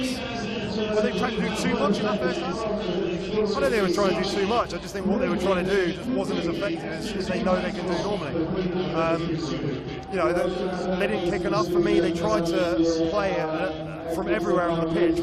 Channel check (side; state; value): both; identical; correlation 1.00